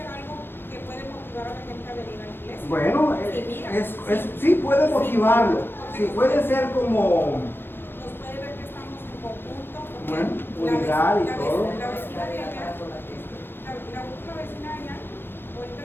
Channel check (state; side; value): late; right; 0.10 ms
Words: algo que puede motivar a la gente a venir a la iglesia. Bueno, sí puede motivarlo. Sí, puede ser como... Nos puede ver que estamos en conjunto. Bueno, unidad y todo. La vecina de allá, la última vecina de allá, ahorita